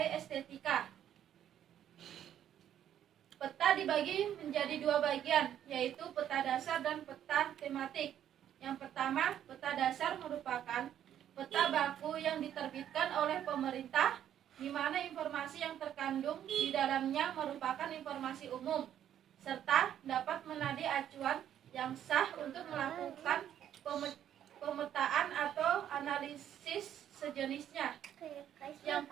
estetika. Peta dibagi menjadi 2 bagian, yaitu peta dasar dan peta tematik. Yang pertama, peta dasar merupakan peta baku yang diterbitkan oleh pemerintah, di mana informasi yang terkandung di dalamnya merupakan informasi umum, serta dapat menjadi acuan yang sah untuk melakukan pemetaan atau analisis sejenisnya. Yang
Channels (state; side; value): quieter; left; 10.4 dB